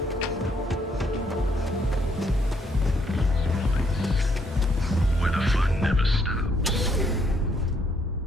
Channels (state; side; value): normal; both; correlation 0.71